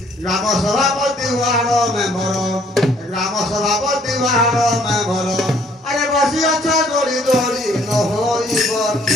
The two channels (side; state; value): both; normal; correlation 0.62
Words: ग्राम सभापति वार्ड मेंबर ग्राम सभापति वार्ड मेंबर अरे बसी अच्छा दौड़ी दौड़ी न होइब